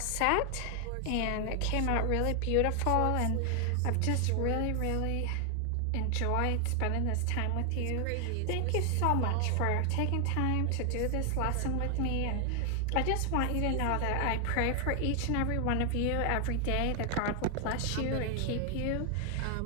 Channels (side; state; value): both; different; correlation 0.00